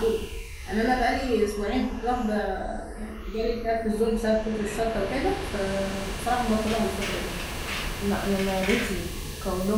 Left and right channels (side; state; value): both; identical; correlation 1.00